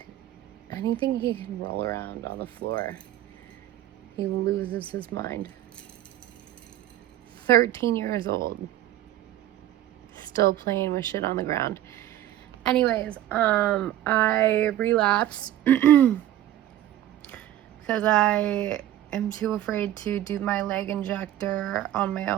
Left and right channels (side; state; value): left; quieter; 12.9 dB